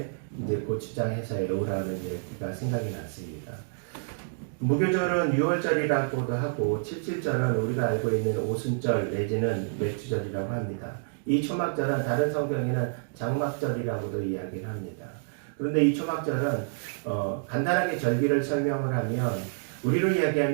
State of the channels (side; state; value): left; silent; digital silence